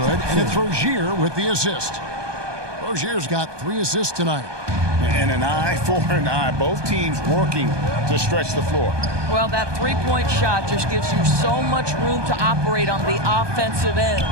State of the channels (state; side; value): late; left; 1.2 ms